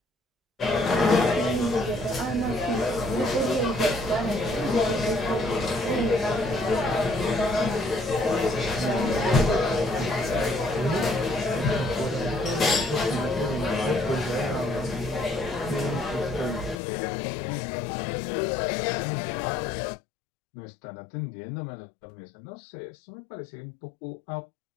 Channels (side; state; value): right; drops out; at 16.8 s